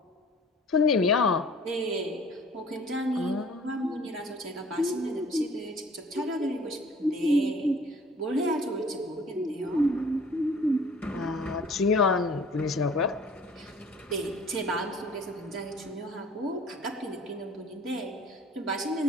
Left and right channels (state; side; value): normal; both; correlation 0.51